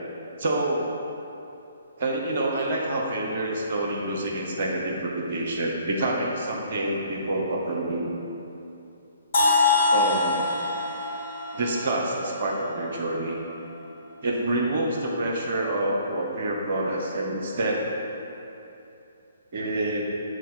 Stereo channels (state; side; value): inverted; both; correlation -0.59